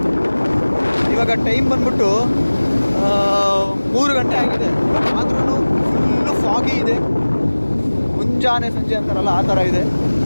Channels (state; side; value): inverted; both; correlation -1.00